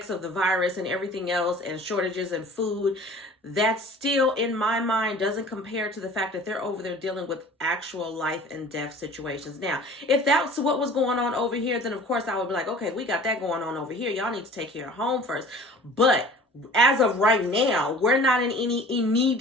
of the virus and everything else, and shortages in food, that still, in my mind, doesn't compare to the fact that they're over there dealing with actual life and death situations. Now, if that's what was going on over here, then of course I would be like, okay, we got that going on over here. Y'all need to take care of home first. But as of right now, we're not in any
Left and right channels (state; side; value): normal; both; correlation 0.45